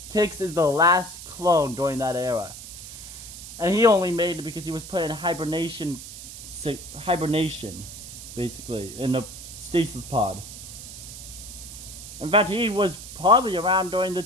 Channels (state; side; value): noise; right; hiss, 12 dB below the sound